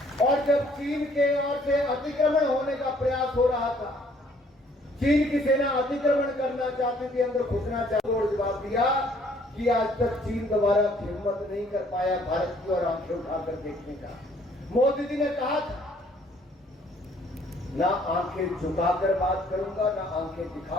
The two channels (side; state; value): both; normal; correlation 0.62